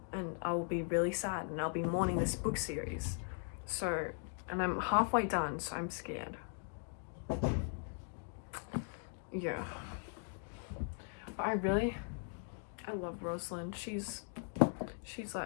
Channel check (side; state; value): right; silent; 52 dB below the other